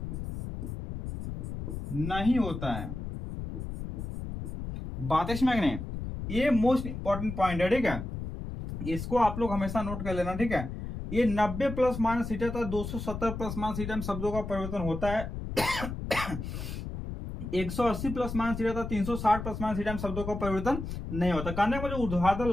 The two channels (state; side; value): noise; left; rumble, 6 dB below the sound